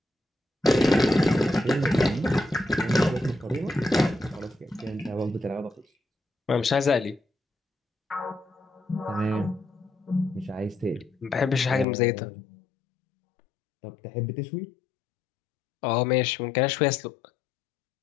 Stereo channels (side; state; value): right; drops out; at 11.9 s